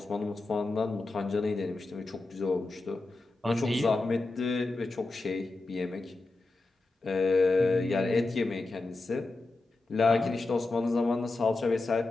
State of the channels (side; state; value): right; quieter; 3.2 dB